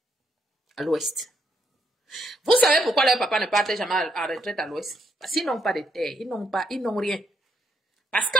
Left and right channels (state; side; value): normal; both; correlation 0.75